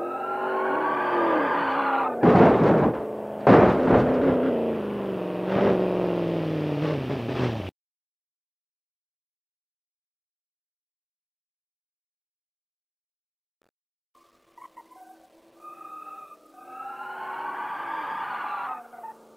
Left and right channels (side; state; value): both; identical; correlation 1.00